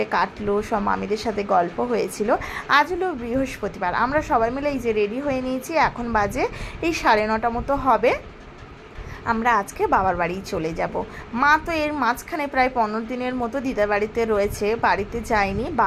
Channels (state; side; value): identical; both; correlation 1.00